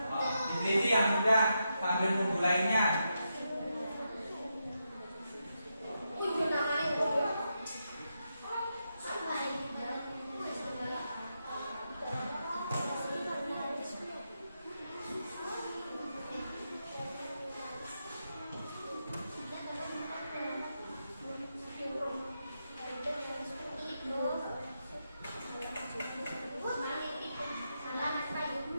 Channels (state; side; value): inverted; both; correlation -0.85